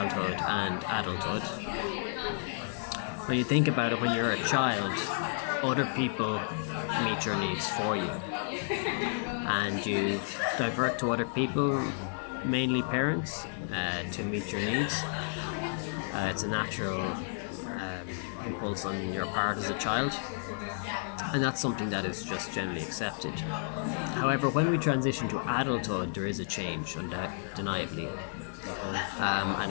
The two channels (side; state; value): right; silent; digital silence